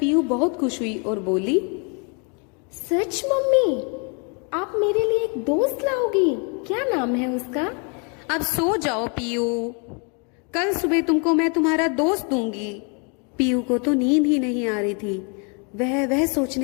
बहुत खुश हुई और बोली, सच मम्मी, आप मेरे लिए एक दोस्त लाओगी? क्या नाम है उसका? अब सो जाओ पीयू, कल सुबह तुमको मैं तुम्हारा दोस्त दूंगी। पीयू को तो नींद ही नहीं आ रही थी। वह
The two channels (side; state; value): right; quieter; 35.9 dB